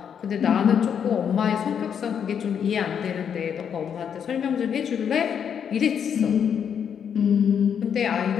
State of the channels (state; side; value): quieter; right; 7.9 dB